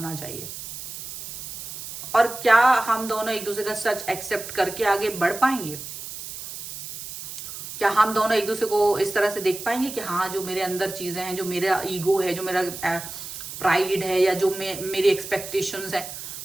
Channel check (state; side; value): noise; right; hiss, 10 dB below the sound